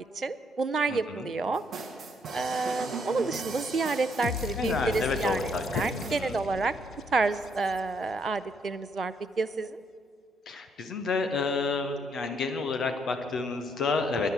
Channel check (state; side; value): normal; both; correlation 0.71